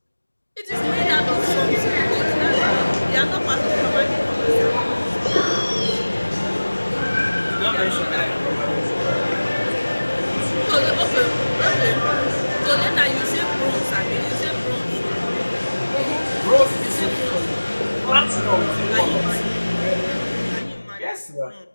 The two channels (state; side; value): inverted; both; correlation -1.00